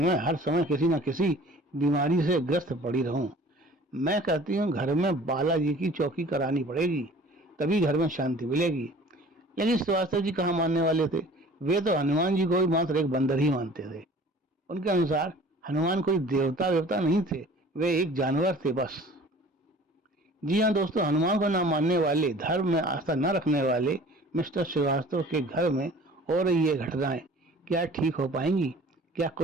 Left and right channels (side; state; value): both; normal; correlation 0.47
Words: हर समय किसी न किसी बीमारी से ग्रस्त पड़ी रहूं। मैं कहती हूँ घर में बालाजी की चौकी करानी पड़ेगी, तभी घर में शांति मिलेगी। लेकिन श्रीवास्तव जी कहाँ मानने वाले थे। वे तो हनुमान जी को भी मात्र एक बंदर ही मानते थे। उनके अनुसार हनुमान कोई देवता वेवता नहीं थे, वे एक जानवर थे बस। जी हाँ दोस्तों, हनुमान को न मानने वाले, धर्म में आस्था न रखने वाले मिस्टर श्रीवास्तव के घर में हो रही ये घटनाएं क्या ठीक हो पाएंगी? क्या